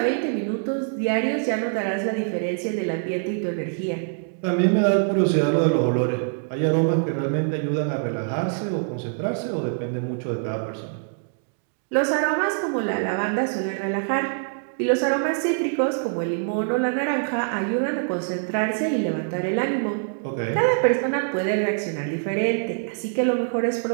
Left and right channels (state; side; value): silent; left; digital silence